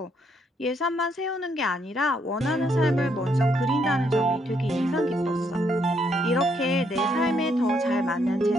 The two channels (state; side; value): normal; both; correlation 0.73